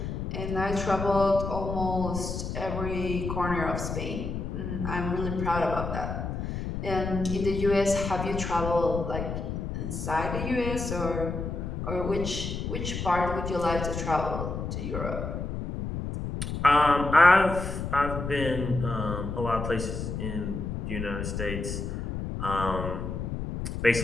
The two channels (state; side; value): noise; left; rumble, 4 dB below the sound